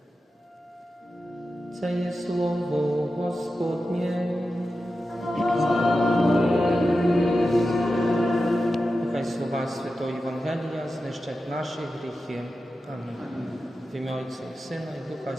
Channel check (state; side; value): normal; both; correlation 0.92